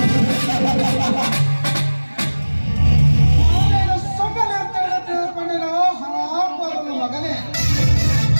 ಸುಮ್ಮನಿರ್ತೇನೆ ತಿಳ್ಕೊಂಡಿರೋ ಹರಾಮನ ಮಗನೇ.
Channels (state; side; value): inverted; both; correlation -1.00